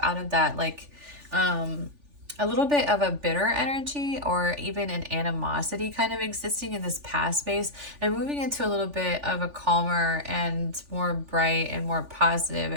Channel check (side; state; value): left; late; 3.4 ms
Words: out of that like a little bit of a bitter energy, or even an animosity kind of existing in this past space, and moving into a little bit of a calmer and more bright and more positive